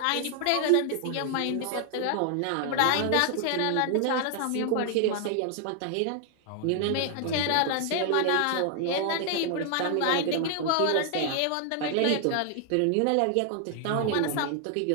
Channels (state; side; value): different; both; correlation 0.00